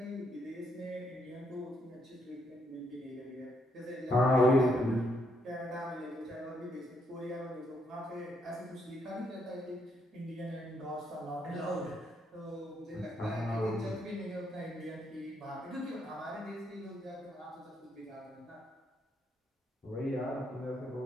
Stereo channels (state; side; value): normal; both; correlation 0.74